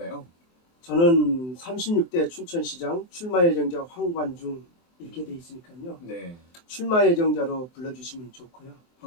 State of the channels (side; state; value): right; late; 24 ms